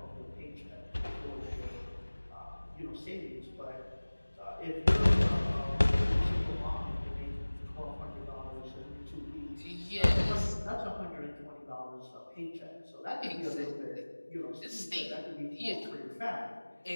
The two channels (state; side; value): inverted; both; correlation -1.00